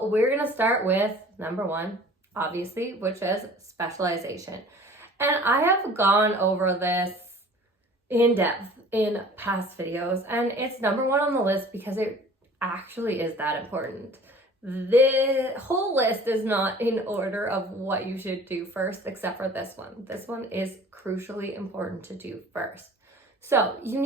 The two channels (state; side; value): normal; both; correlation 0.47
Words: we're going to start with number 1, obviously, which is specialization. And I have gone over this in depth in past videos, and it's number 1 on the list because it actually is that important. The whole list is not in order of what you should do first, except for this one. This one is crucially important to do first. So you